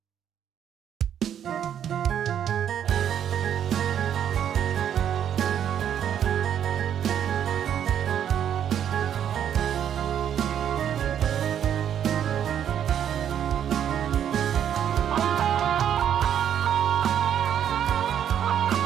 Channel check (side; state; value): left; quieter; 9.5 dB